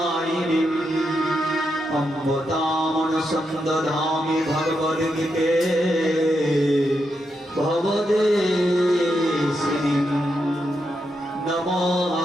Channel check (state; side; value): normal; both; correlation 0.84